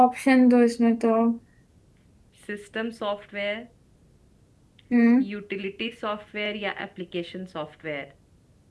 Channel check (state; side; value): identical; both; correlation 1.00